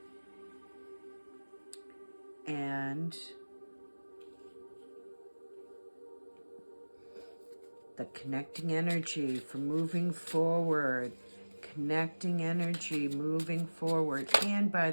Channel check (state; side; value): inverted; both; correlation -1.00